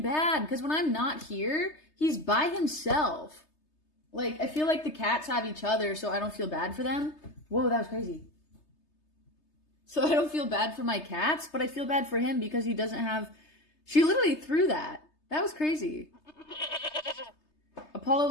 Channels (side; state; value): right; late; 3.3 ms